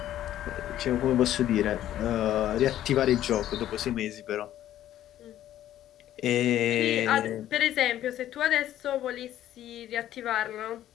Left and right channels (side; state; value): right; quieter; 12.4 dB